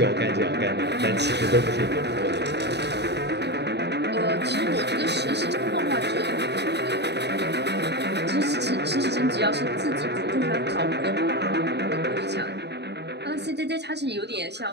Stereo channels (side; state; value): left; late; 0.49 ms